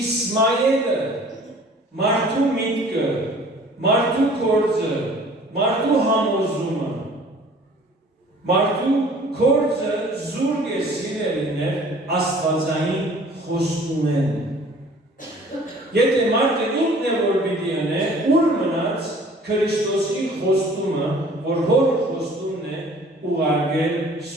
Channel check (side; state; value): both; normal; correlation 0.51